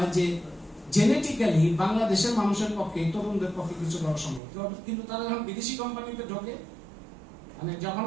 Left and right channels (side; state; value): left; drops out; at 4.4 s